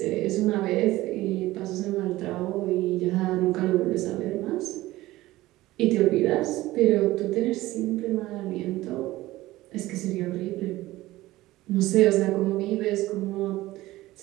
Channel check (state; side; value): quieter; left; 17.4 dB